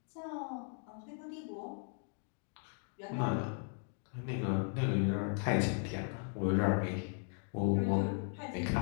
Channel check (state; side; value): silent; right; 53 dB below the other